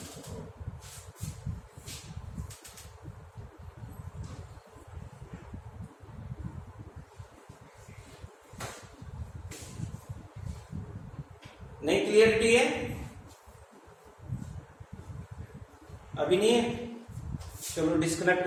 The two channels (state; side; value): identical; both; correlation 1.00